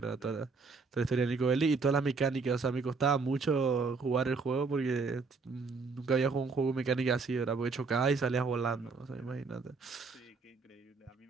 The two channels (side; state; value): left; quieter; 4.5 dB